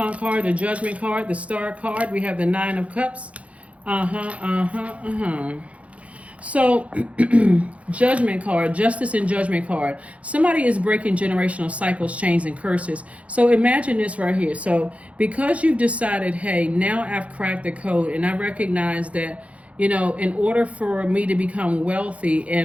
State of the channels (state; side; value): late; left; 0.064 ms